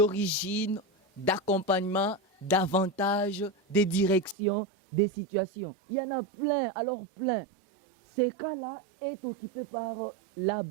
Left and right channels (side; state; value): left; drops out; at 4.4 s